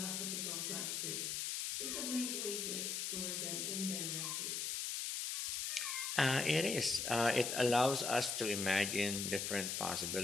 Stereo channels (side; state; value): left; noise; hiss, 1 dB below the sound